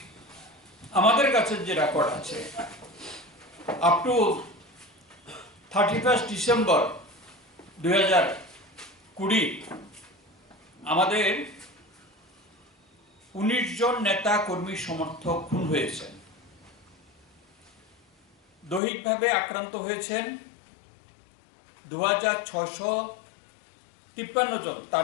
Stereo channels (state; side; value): drops out; right; at 18.8 s